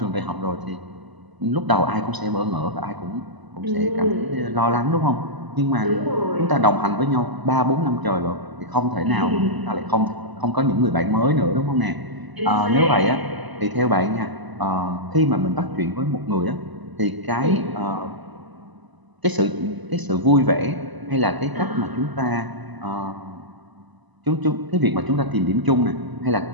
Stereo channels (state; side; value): late; left; 1.0 ms